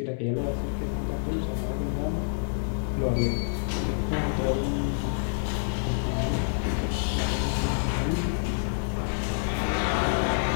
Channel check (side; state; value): right; silent; 60 dB below the other